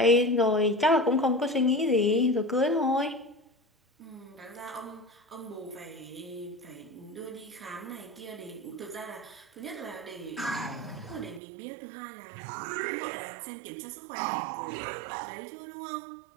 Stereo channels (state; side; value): drops out; left; at 11.4 s